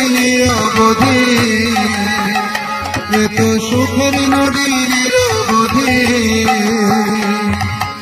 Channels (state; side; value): identical; both; correlation 1.00